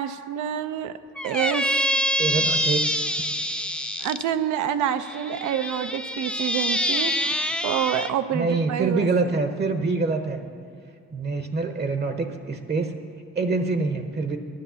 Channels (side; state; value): left; quieter; 3.1 dB